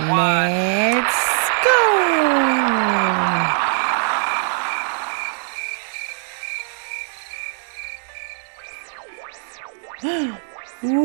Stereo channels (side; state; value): left; silent; digital silence